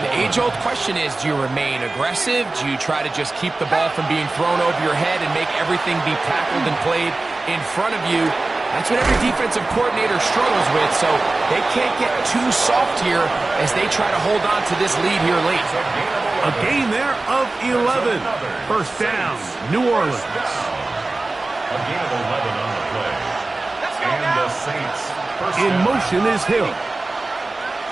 the age-old question is, do you remain aggressive? Do you try to just keep the ball from being thrown over your head and make everything be tackled and played in front of you? That's what every defensive coordinator struggles with, so they can't get too soft here as they try to hold on to this lead here late. A gain there of 11. 1st down, New Orleans. A gain of 11 on the play. And the Saints. In motion is Hill.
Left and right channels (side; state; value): left; quieter; 3.2 dB